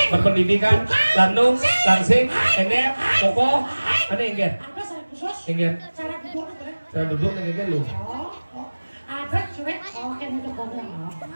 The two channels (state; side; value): inverted; both; correlation -1.00